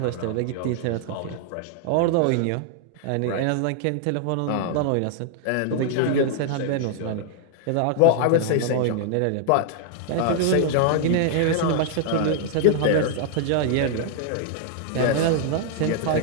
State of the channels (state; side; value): different; both; correlation -0.01